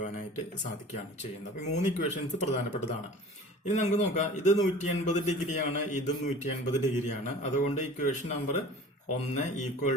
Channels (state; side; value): normal; both; correlation 0.43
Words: സാധിക്കുകയാണ് ചെയ്യുന്നത്. അപ്പൊ 3 ഇക്വേഷൻസ് പ്രധാനപ്പെട്ടതാണ്. ഇനി നമുക്ക് നോക്കാം. ഇത് 180 ഡിഗ്രിയാണ്, ഇതും 180 ഡിഗ്രിയാണ്. അതുകൊണ്ട് equation number 1